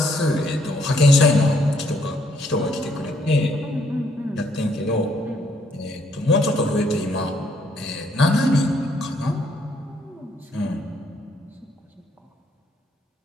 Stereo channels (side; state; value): both; normal; correlation 0.69